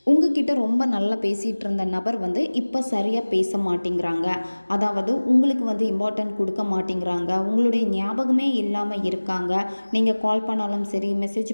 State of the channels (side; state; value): both; inverted; correlation -1.00